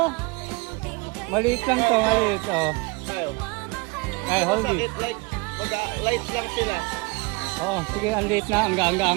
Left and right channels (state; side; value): quieter; left; 26.9 dB